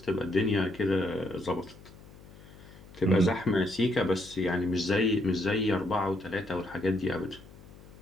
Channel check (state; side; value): noise; left; hum, 20 dB below the sound